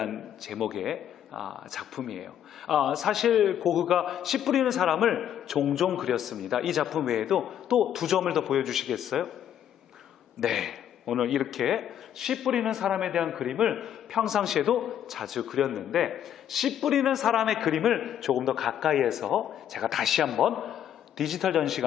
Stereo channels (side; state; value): right; quieter; 10.1 dB